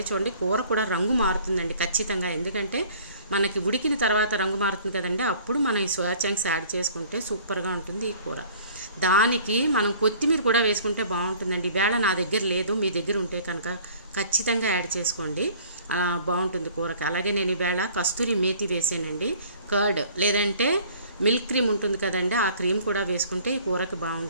చూడండి, కూర కూడా రంగు మారుతుందండి ఖచ్చితంగా. ఎందుకంటే మనకి ఉడికిన తర్వాత రంగు మారుతుంది కదండి, అప్పుడు మనం ఈ సోయా చంక్స్ యాడ్ చేసుకుంటే సూపర్గా ఉంటుంది ఈ కూర. దానికి మనం కొత్తిమీర కూడా వేసుకుంటే బాగుంటుందండి. ఈవేళ నా దగ్గర లేదు, మీ దగ్గర ఉంటే కనుక ఖచ్చితంగా యాడ్ చేసుకోండి, బాగుంటుంది కూరకి. అలాగే నేను ఈవేళ కస్తూరి మేతి వేసానండి, కర్డ్ లేదంటే మిల్క్ క్రీమ్ ఉంటుంది కదండి, ఆ క్రీమ్ కూడా వేసుకుంటే ఈ కూరకి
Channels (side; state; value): both; inverted; correlation -0.52